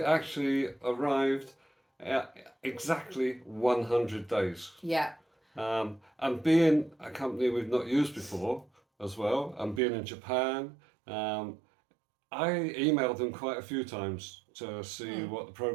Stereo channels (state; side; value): drops out; left; at 9.8 s